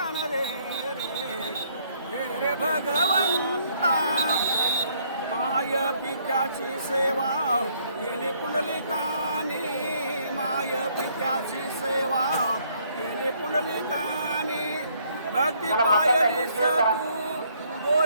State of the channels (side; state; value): both; inverted; correlation -0.67